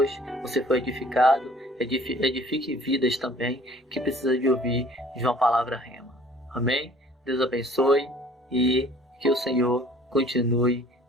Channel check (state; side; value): normal; both; correlation 0.53